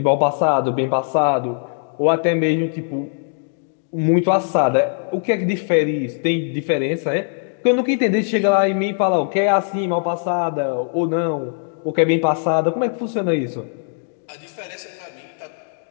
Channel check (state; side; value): silent; right; digital silence